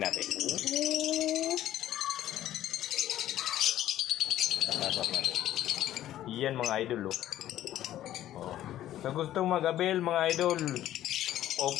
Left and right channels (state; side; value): quieter; right; 13.0 dB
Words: natin. Tapasok natin. Yan mga idol o. Sa gustong mag-avail mga idol,